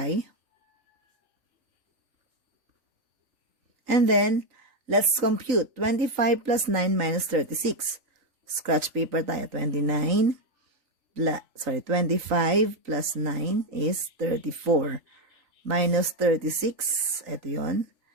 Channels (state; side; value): late; left; 3.9 ms